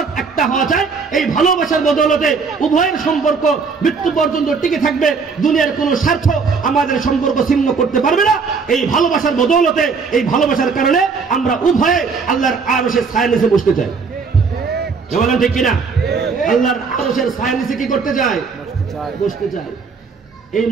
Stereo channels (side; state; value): left; quieter; 5.1 dB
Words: একটা হওয়া চাই। এই ভালোবাসার বদৌলতে উভয়ের সম্পর্ক মৃত্যু পর্যন্ত টিকে থাকবে, দুনিয়ার কোনো স্বার্থ আমাদের সম্পর্ক ছিন্ন করতে পারবে না। এই ভালোবাসার বদৌলতে, এই ভালোবাসার কারণে আমরা উভয়ে আল্লাহর আরশের ছায়ার নিচে বসতে চাই। বলেন ঠিক কিনা? আল্লাহর আরশের ছায়ার নিচে কি করতে চাই? বসতে চাই। এই